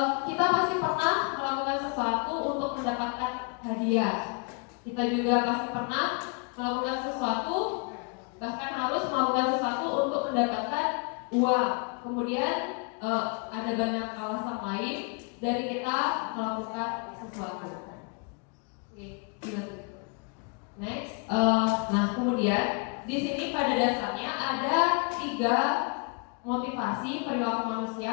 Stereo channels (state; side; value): quieter; right; 36.3 dB